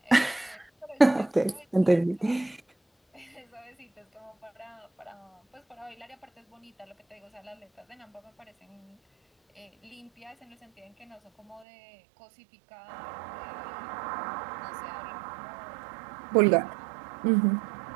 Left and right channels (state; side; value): drops out; left; at 11.7 s